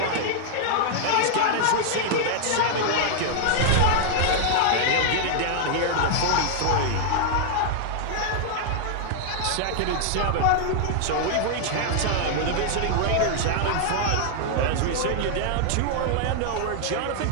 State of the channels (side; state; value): both; different; correlation -0.01